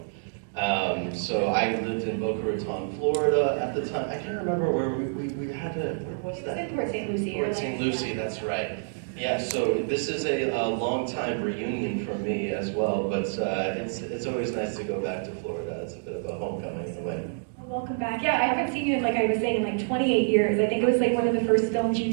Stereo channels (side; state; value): left; silent; digital silence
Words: So I lived in Boca Raton, Florida at the time. I can't remember where we had to, where was that? It was in Port St. Lucie. Port St. Lucie, that's right. Yeah, so this is a long time reunion for me as well, but it's always nice to go back to Florida. It's a bit of a homecoming in a way. Well, welcome back. Yeah, I haven't seen you in, like I was saying, in like 28 years. I think it was like one of the first films you